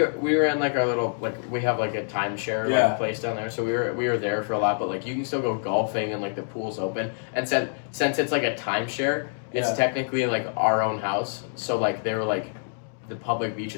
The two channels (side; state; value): right; silent; digital silence